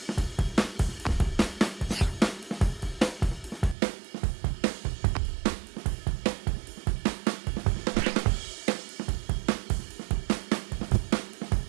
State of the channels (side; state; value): left; drops out; at 3.8 s